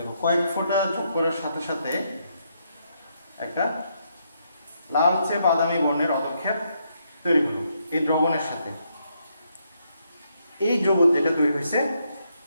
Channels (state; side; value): inverted; both; correlation -0.76